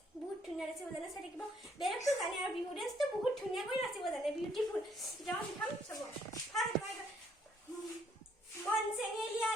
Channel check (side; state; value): both; normal; correlation 0.67